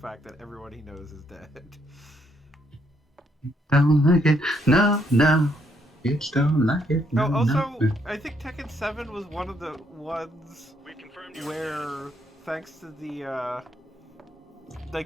that everyone he knows is dead. Don't like it. No. It's don't like it. No, Oh, also, no. I think Tekken 7 was one of the ones where, thanks to the,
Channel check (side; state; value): both; normal; correlation 0.73